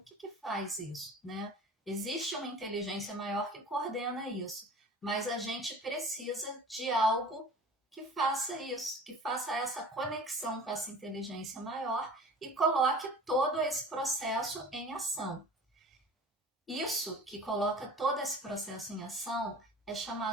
faz isso, né? Existe uma inteligência maior que coordena isso, mas a gente precisa de algo que faça isso, que faça essa conexão com essa inteligência maior e coloque todo esse processo em ação. Isso que coloca todo esse processo em ação é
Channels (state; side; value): normal; both; correlation 0.42